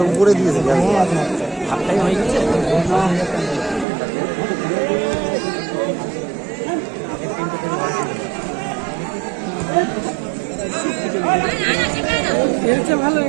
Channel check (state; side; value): drops out; left; at 3.9 s